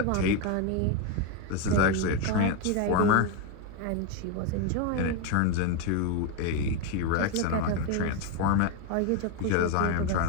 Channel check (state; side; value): different; both; correlation 0.02